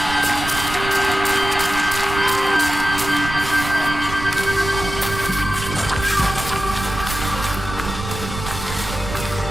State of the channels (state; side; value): noise; right; rumble, 8 dB below the sound